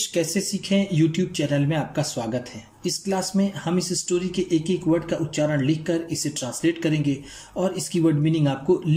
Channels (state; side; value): identical; both; correlation 1.00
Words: कैसे सीखें यूट्यूब चैनल में आपका स्वागत है। इस क्लास में हम इस स्टोरी के एक एक वर्ड का उच्चारण लिखकर इसे ट्रांसलेट करेंगे और इसकी वर्ड मीनिंग आपको